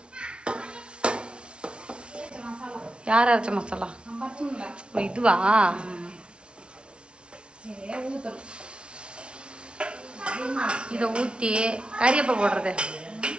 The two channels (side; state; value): left; late; 0.057 ms